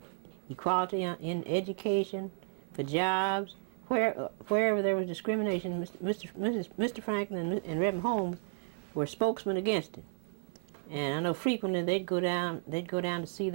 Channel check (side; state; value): left; silent; digital silence